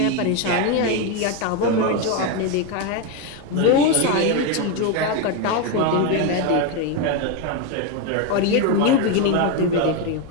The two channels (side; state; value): both; different; correlation 0.03